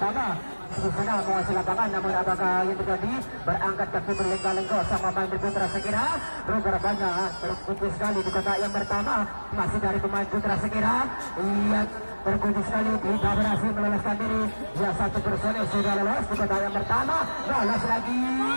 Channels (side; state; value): both; inverted; correlation -1.00